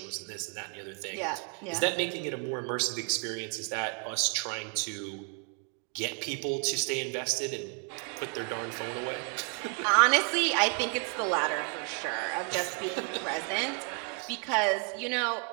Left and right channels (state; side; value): quieter; left; 35.9 dB